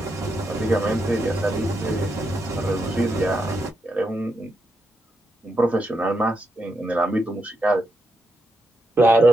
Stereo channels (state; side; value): normal; both; correlation 0.83